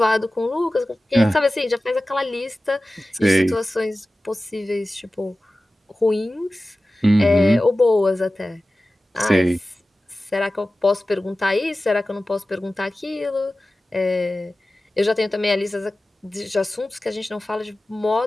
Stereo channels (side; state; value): both; normal; correlation 0.96